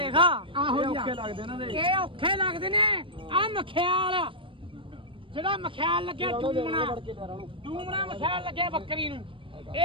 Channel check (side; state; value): left; late; 0.25 ms